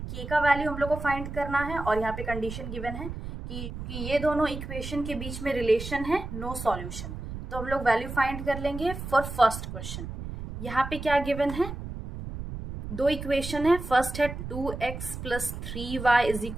k का वैल्यू हम लोग को फाइंड करना है और यहाँ पे कंडीशन गिवन है कि ये दोनों इक्वेशन के बीच में रिलेशन है नो सॉल्यूशन. तो हम लोग वैल्यू फाइंड कर लेंगे फॉर फर्स्ट क्वेश्चन. यहाँ पे क्या गिवन है, दो इक्वेशन है. फर्स्ट है 2x + 3y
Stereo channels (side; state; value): right; noise; rumble, 8 dB below the sound